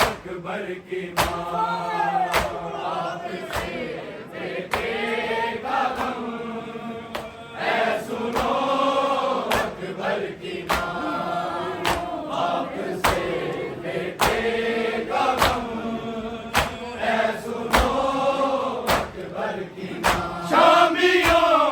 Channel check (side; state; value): both; identical; correlation 1.00